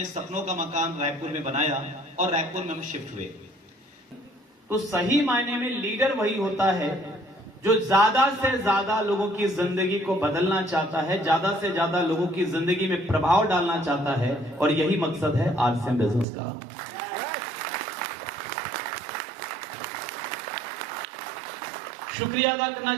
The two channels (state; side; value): drops out; left; at 16.2 s